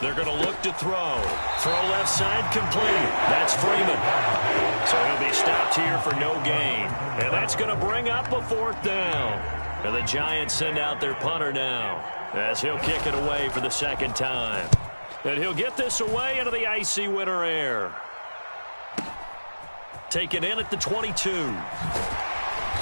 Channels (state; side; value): inverted; both; correlation -1.00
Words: They're going to look to throw. Throw left side complete. That's Freeman. So he'll be stopped here for no gain. And that's going to bring up a 4th down. And the Giants send out their punter now as he'll kick it away for the 2nd time. And he'll get this away into the icy winter air. Taken in at the 22.